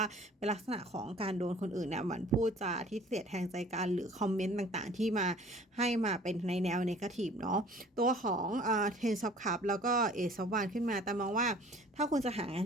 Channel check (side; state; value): both; normal; correlation 0.50